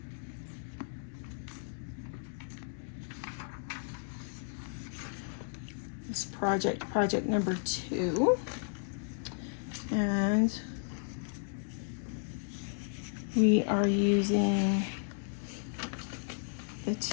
This project number 2. And we are using the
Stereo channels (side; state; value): right; silent; digital silence